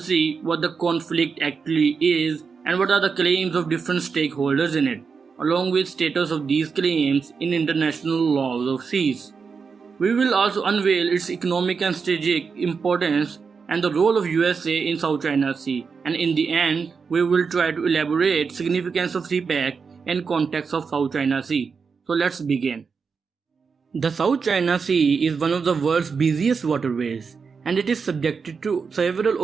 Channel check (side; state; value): left; quieter; 5.4 dB